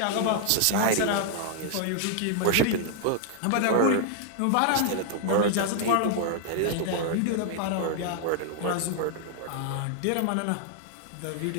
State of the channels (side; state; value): both; different; correlation 0.00